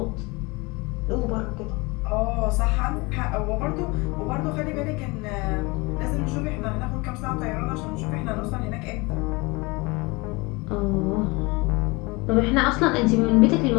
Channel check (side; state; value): right; quieter; 25.4 dB